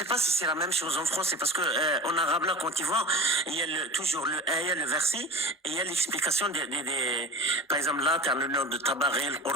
pas si c'est la même chose en français parce que en arabe là quand tu vois il y a toujours le ayah, le verset et il y a l'explication des par exemple là tu as le nom de Tabari, le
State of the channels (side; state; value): both; normal; correlation 0.34